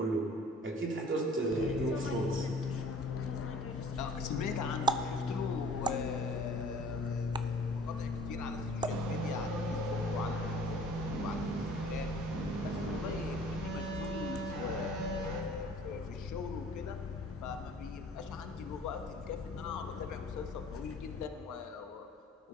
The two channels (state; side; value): normal; both; correlation 0.50